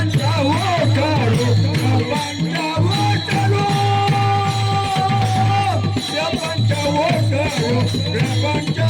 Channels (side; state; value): both; identical; correlation 1.00